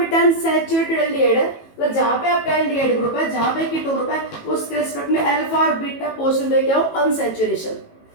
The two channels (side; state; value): right; late; 18 ms